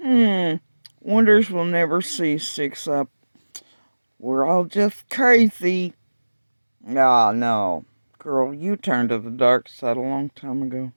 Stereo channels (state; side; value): inverted; both; correlation -1.00